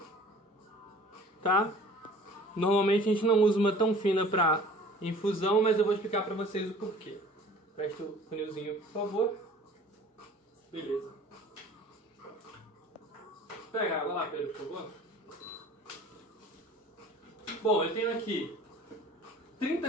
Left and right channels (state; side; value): normal; both; correlation 0.48